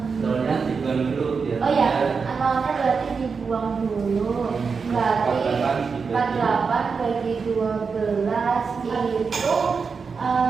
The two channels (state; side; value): quieter; left; 5.3 dB